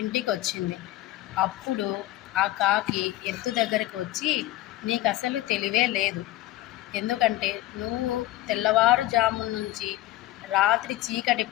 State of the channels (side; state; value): right; quieter; 16.0 dB